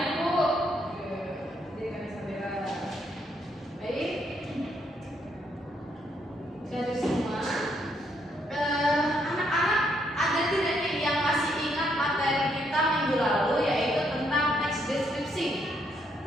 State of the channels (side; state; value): both; normal; correlation 0.74